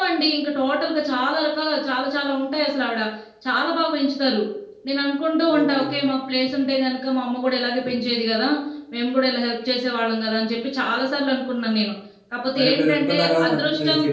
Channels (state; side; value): identical; both; correlation 1.00